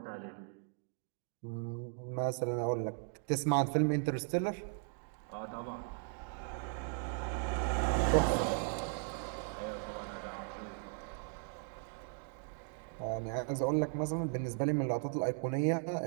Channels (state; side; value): silent; left; 53 dB below the other